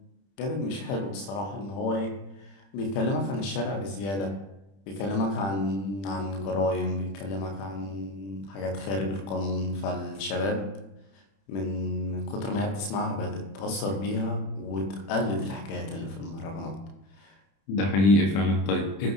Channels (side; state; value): right; late; 31 ms